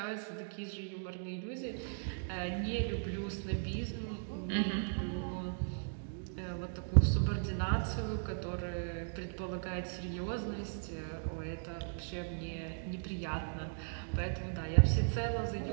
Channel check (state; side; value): silent; left; digital silence